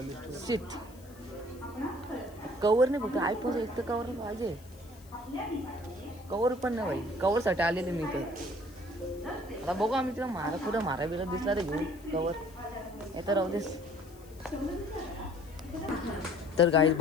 सीट कवर नाही फक्त आयफोनचं एक तर कवर पाहिजे. कवर पण नाही भाई. कवरसाठी आलेले मी इथं. आता बघू आम्ही तिला कुठं मारा बिरा दिसला तर घेऊ कवर. येतं राहू देस. तर गाईज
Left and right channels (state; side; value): noise; left; hiss, 25 dB below the sound